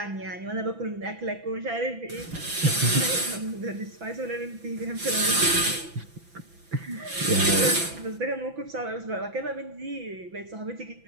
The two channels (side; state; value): left; late; 6.0 ms